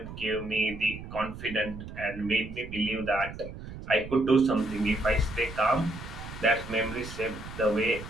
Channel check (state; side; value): noise; right; rumble, 11 dB below the sound